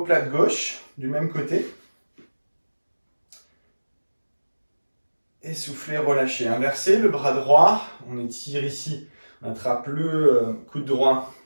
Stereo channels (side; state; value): both; inverted; correlation -1.00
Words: gauche, du même côté. Et soufflez, relâchez. Inversez le bras droit. On étire ici. On attrape le coude droit